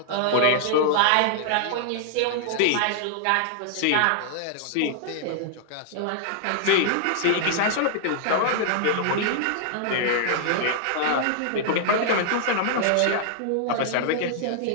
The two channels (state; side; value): different; both; correlation -0.01